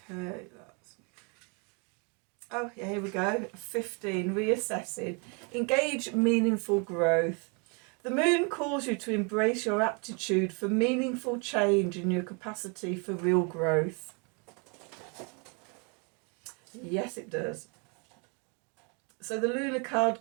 that's... Oh, yeah, here we go. 15. Reassessing. Engage meaningful growth. The moon calls you to embrace your aptitude for meaningful change and your capacity for real growth. Yes, it does. So the lunar card,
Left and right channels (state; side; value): quieter; left; 34.5 dB